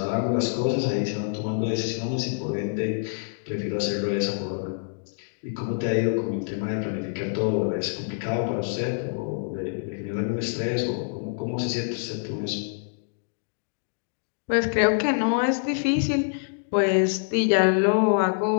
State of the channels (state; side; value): silent; right; digital silence